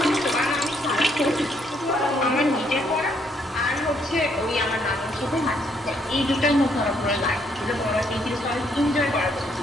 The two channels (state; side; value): normal; both; correlation 0.71